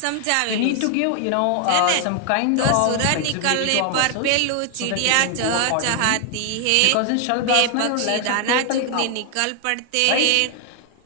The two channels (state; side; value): different; both; correlation 0.00